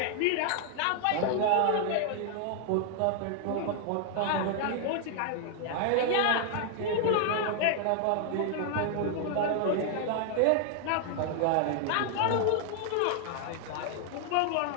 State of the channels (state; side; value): different; both; correlation 0.00